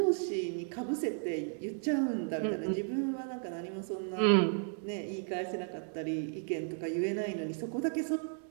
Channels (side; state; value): left; silent; 55 dB below the other